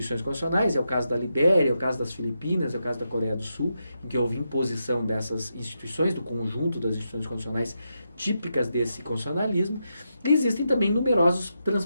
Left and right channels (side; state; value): both; inverted; correlation -0.85